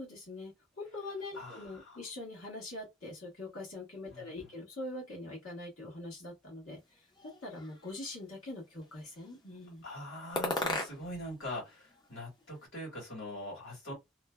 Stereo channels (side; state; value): both; normal; correlation 0.30